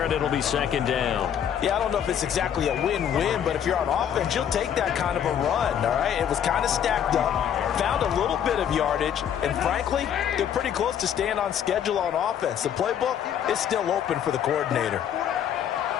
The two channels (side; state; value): right; quieter; 9.2 dB